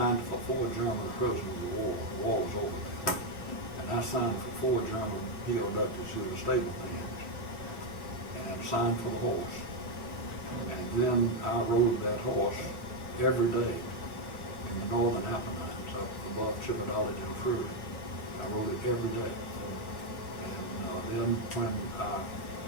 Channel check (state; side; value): late; right; 3.1 ms